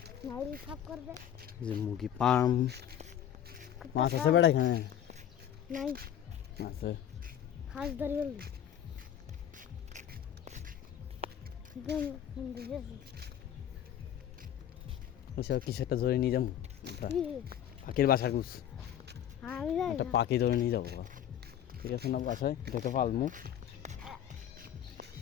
নাউরি সাফ করবে। যে মুরগি পাম মাছ আছে বেড়া এখানে নাই আছে। হাঁস ধরি বলবি ওইসব কিছু একটা ধরে নিয়ে যাবো। পাখির বাসা গুছ একটা পাখি ধরে নিয়ে যাবো। ঠিক আছে না? বাসায় দেখে পালমু।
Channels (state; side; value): quieter; right; 10.2 dB